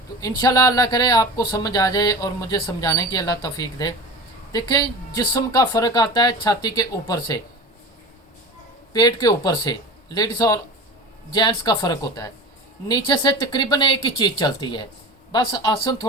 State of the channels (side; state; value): both; normal; correlation 0.33